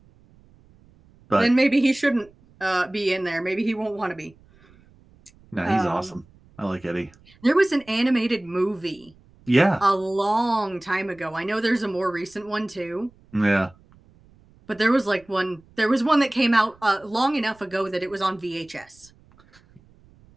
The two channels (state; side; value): noise; right; rumble, 28 dB below the sound